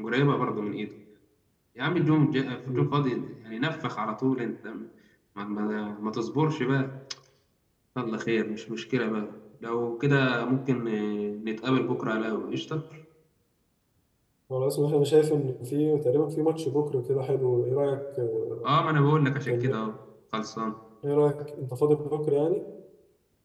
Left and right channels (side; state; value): both; identical; correlation 1.00